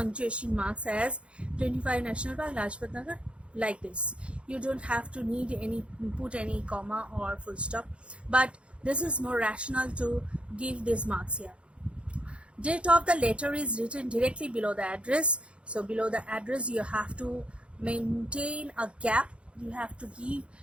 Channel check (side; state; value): left; late; 0.059 ms